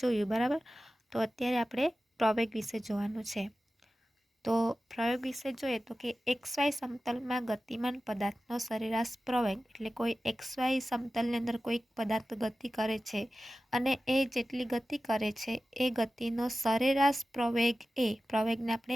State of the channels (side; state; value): both; normal; correlation 0.95